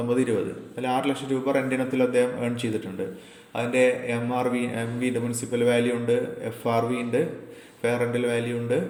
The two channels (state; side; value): identical; both; correlation 1.00